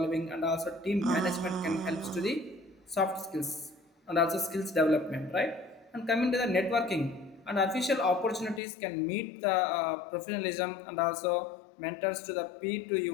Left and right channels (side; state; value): right; drops out; at 8.6 s